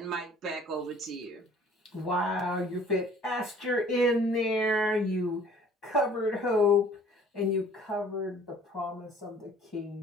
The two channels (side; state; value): both; normal; correlation 0.53